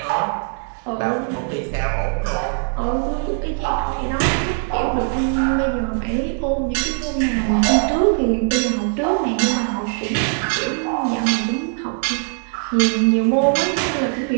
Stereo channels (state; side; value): silent; left; 56 dB below the other